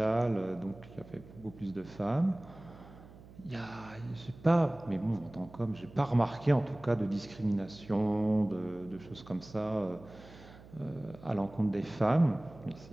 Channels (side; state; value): right; noise; hum, 20 dB below the sound